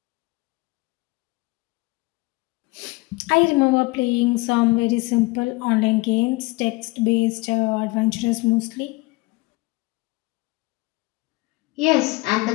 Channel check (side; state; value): right; quieter; 23.5 dB